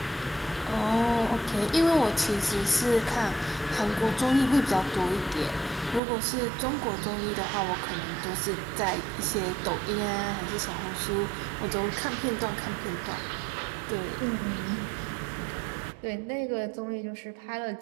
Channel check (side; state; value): left; drops out; at 6.0 s